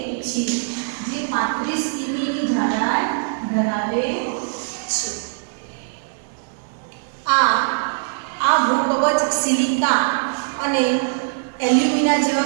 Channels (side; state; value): left; silent; digital silence